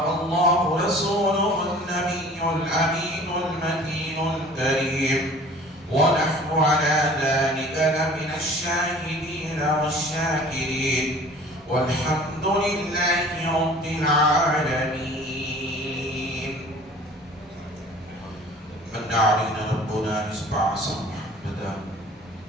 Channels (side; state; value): both; normal; correlation 0.47